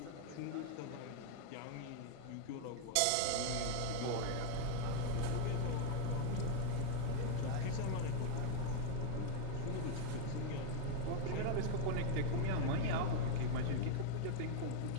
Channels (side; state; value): both; different; correlation 0.01